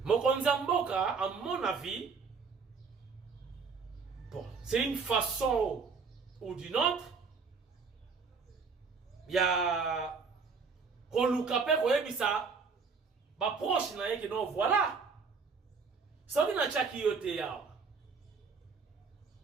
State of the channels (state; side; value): quieter; left; 5.1 dB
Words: Mokonza Mboka, à mon avis, bon, c'est une façon ou d'une autre. Il y a Kolukape Koyebisa, ba proche na yeke non voilà. Ça dit na chaki yote ya.